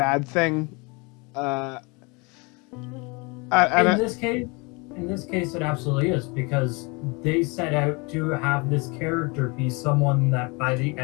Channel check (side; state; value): right; quieter; 28.6 dB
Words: thing. In this case, it absolutely is, because they set out to have this character be someone that by the